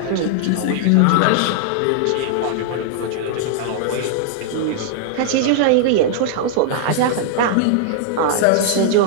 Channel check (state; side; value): different; both; correlation -0.01